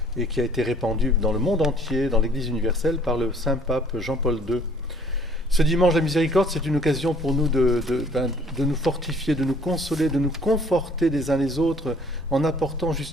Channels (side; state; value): both; normal; correlation 0.57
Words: et qui a été répandue dans le monde entier, dans l'Église universelle, par le Saint-Pape Jean-Paul II. Ce dimanche de la miséricorde, c'est une occasion pour nous de nous fortifier, de nous consoler, de nous conforter les uns les autres en apportant